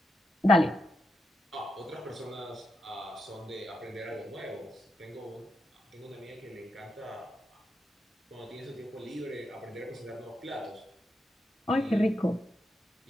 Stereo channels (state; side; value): normal; both; correlation 0.84